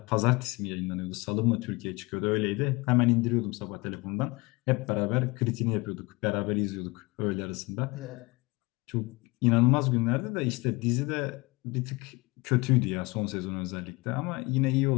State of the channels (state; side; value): quieter; right; 24.6 dB